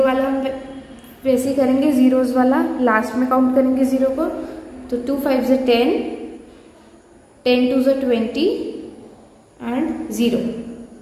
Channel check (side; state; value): both; identical; correlation 1.00